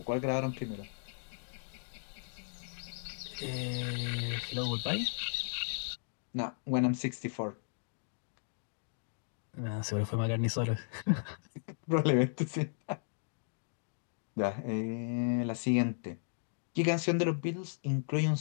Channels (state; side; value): silent; right; digital silence